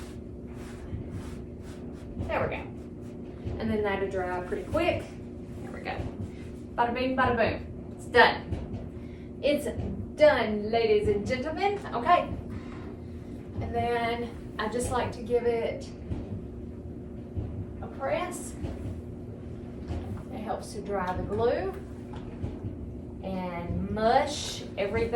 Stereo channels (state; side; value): identical; both; correlation 1.00